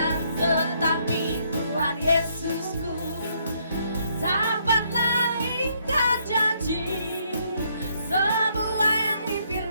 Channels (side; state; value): both; inverted; correlation -0.71